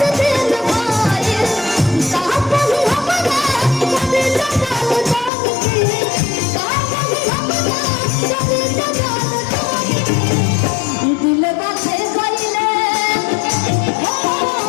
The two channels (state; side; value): drops out; right; at 5.3 s